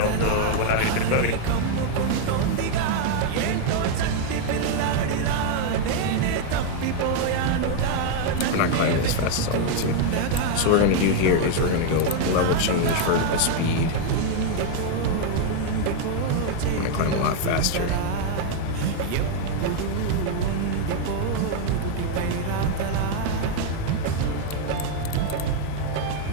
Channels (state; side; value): different; both; correlation 0.00